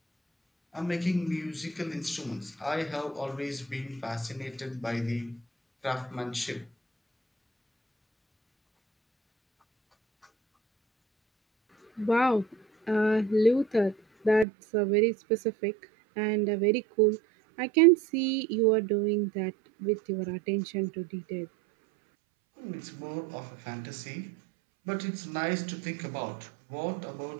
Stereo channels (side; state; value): left; drops out; at 14.5 s